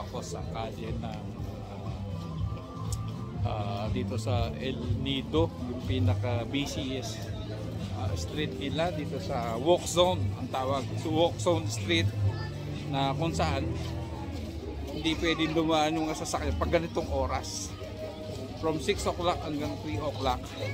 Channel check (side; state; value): both; identical; correlation 1.00